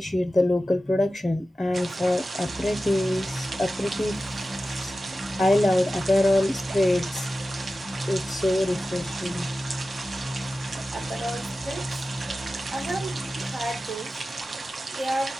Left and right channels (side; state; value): both; normal; correlation 0.94